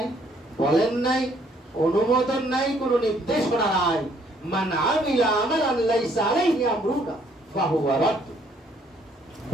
বলেন নাই, অনুমোদন নাই, কোনো নির্দেশনা নাই। মান আমিলা আমালান লাইসা আলাইহি আমরুনা ফাহুয়া রাদ্দ।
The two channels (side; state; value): both; normal; correlation 0.66